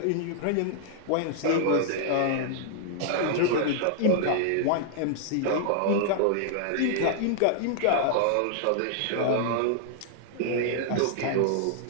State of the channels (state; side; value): different; both; correlation -0.01